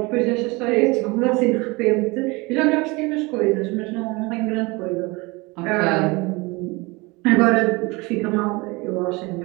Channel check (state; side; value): quieter; left; 25.1 dB